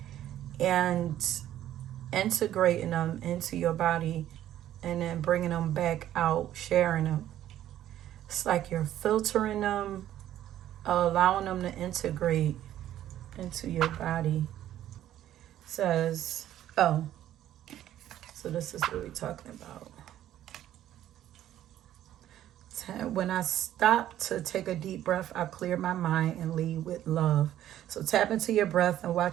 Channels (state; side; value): quieter; left; 12.2 dB